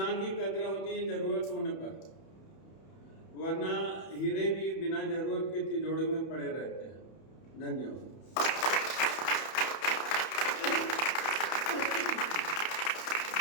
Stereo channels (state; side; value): late; right; 31 ms